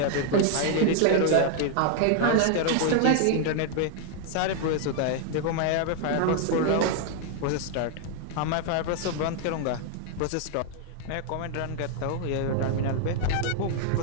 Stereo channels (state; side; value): different; both; correlation 0.00